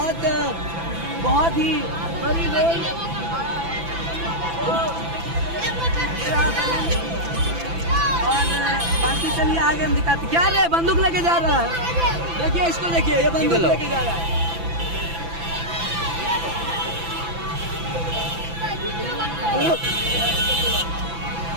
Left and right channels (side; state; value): left; late; 6.0 ms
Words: ही बड़ी रोल। और बाकी चलिए आगे हम दिखाते। क्या रे बंदूक लेके जा रहा है, देखिए इसको देखिए, ये बंदूक लेके जा रहा है।